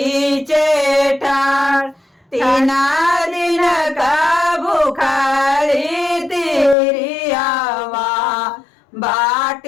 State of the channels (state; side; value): drops out; right; at 6.8 s